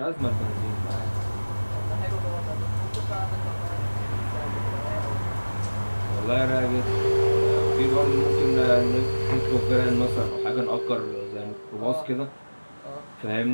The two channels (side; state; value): both; inverted; correlation -1.00